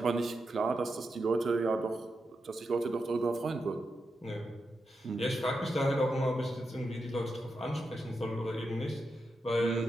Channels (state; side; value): normal; both; correlation 0.87